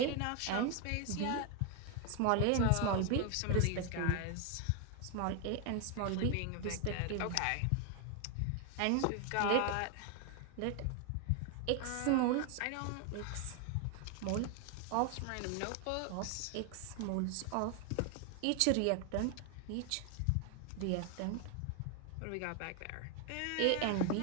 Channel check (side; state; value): both; different; correlation 0.01